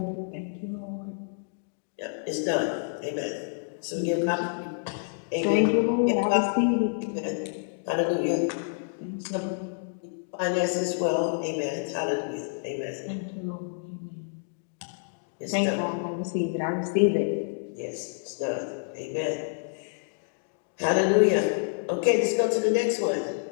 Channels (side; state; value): right; silent; digital silence